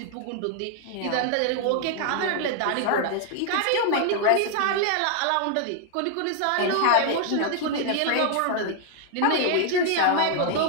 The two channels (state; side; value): different; both; correlation 0.00